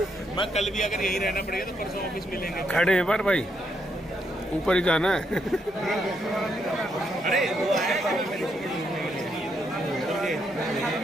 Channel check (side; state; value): both; normal; correlation 0.77